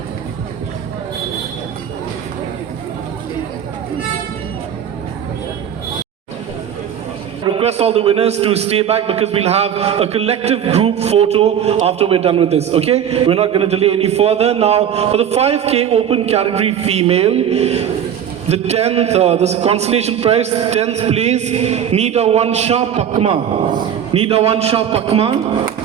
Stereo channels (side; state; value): left; quieter; 9.1 dB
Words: Request all the winners to stay back because we'll have a collective group photo after we're done with this, okay? We're not going to delay any further. Now, for the 5K open category female, the 10th, this consolation prize, 10th place, Nida Wansha Pakma. Nida Wansha Pakma.